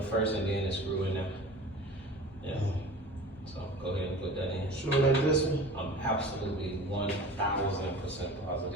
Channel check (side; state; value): both; normal; correlation 0.39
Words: first and then it's screw in there. Yeah. So go ahead and put that in. Sure, like this one? I'm absolutely 1,000% There's